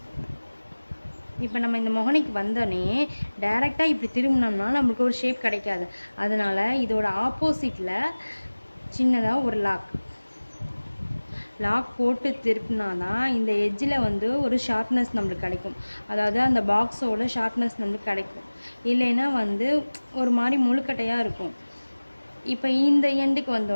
இப்போ நம்ம இந்த மொகனைக்கு வந்தோடனே டைரெக்டாக இப்படி திரும்பினோம்னா நம்மளுக்கு ஒரு ஷேப் கிடைக்காது. அதனால் இதோட ஆப்போசிட்டில் சின்னதாக ஒரு லாக் போட்டு திருப்பினா தான் இந்த எட்ஜில் வந்து ஒரு ஷார்ப்னஸ் நம்மளுக்கு கிடைக்கும். அதாவது அந்த பாக்ஸோட ஷார்ப்னஸ் நம்மளுக்கு கிடைக்கும். இல்லைன்னா வந்து ஒரு மாதிரி முழுக்கட்டையாக இருக்கும். இப்போ இந்த எண்டுக்கு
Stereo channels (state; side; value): inverted; both; correlation -1.00